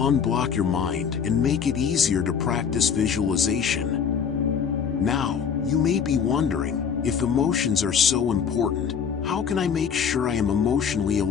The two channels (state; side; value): quieter; right; 7.0 dB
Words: your mind and make it easier to practice visualization. Now, you may be wondering, if emotions are so important, how can I make sure I am emotionally